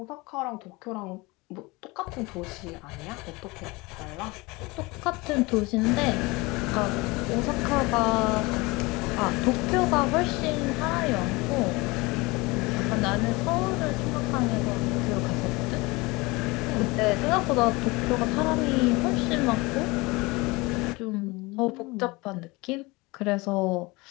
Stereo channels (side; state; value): right; quieter; 23.9 dB